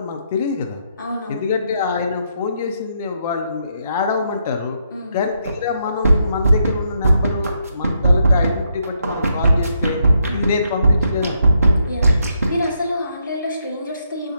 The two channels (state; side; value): inverted; both; correlation -0.77